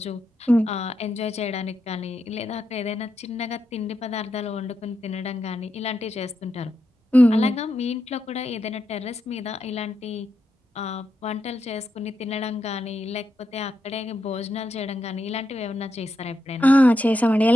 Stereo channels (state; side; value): normal; both; correlation 0.85